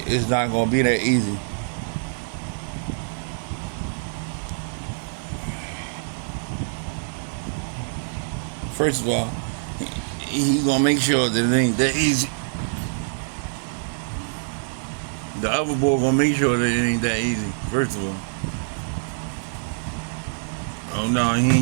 not gonna be that easy. First of all, he's gonna make sure that it ain't that easy. The other boy gonna make sure that it ain't that easy. First of all. Oh no, he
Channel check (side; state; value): left; silent; digital silence